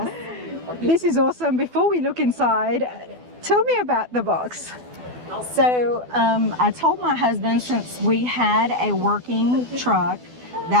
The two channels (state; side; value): late; left; 12 ms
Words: This is awesome. Before we look inside, tell me about the box. So I told my husband, since we had a working truck,